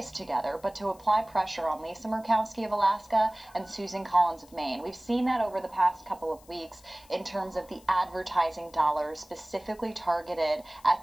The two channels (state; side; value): noise; left; hiss, 26 dB below the sound